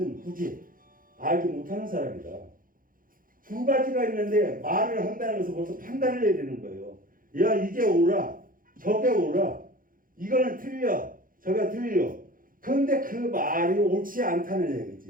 굳이 알지 못하는 사람이다. 두 가지가 있는데 말을 한다는 것은 벌써 판단을 해야 되는 거예요. 야, 이게 옳아, 저게 옳아, 이거는 틀려, 저게 틀려. 그런데 그 말이 옳지 않다는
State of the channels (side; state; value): left; late; 0.40 ms